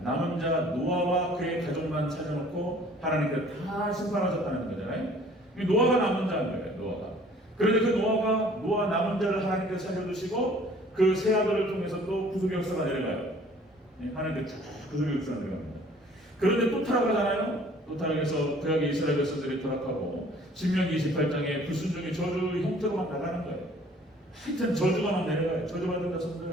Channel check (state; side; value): normal; both; correlation 0.54